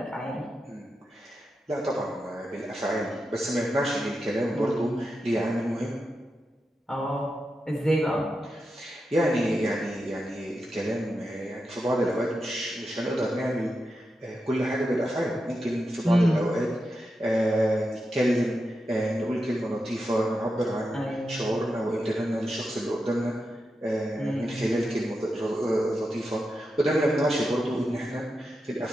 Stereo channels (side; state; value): both; normal; correlation 0.88